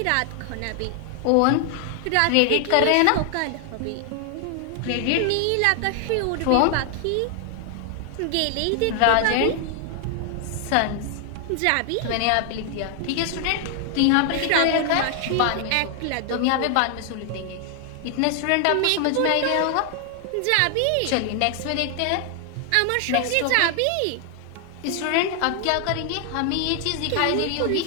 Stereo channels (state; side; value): different; both; correlation 0.00